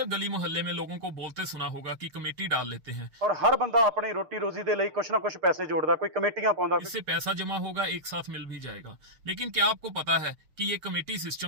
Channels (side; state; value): left; late; 6.6 ms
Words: गली मोहल्ले में लोगों को बोलते सुना होगा कि कमेटी डाल लेते हैं, और हर बंदा अपनी रोटी रोजी दे ਲਈ कुछ ना कुछ पैसे जोड़दा, कोई कमेटियां पाउंदा। इससे पैसा जमा होगा, एक साथ मिल भी जाएगा। लेकिन क्या आपको पता है कि ये कमेटी